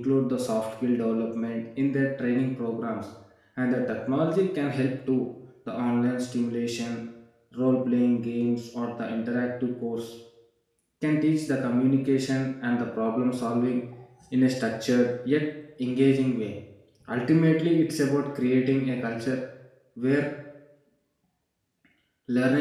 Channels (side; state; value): both; identical; correlation 1.00